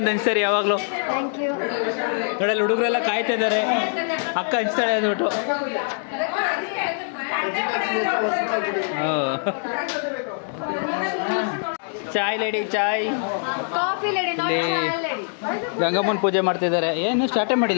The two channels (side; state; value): right; silent; 61 dB below the other